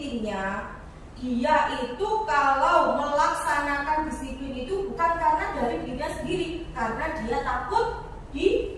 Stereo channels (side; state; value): both; identical; correlation 1.00